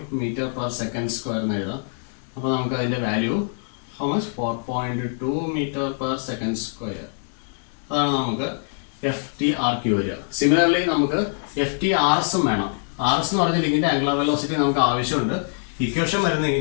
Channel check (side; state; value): right; silent; digital silence